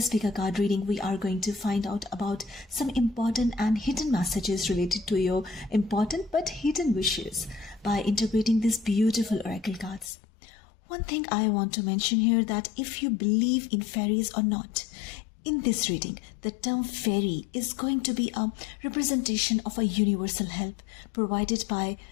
pick card reading, we are going to find out about some important and hidden messages related to your important but hidden wishes by interpreting these beautiful oracle cards. One thing I want to mention here, that if you believe in fairies or not, in this reading, the term fairy is going to be a representation of a universal help provided by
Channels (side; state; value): right; drops out; at 10.1 s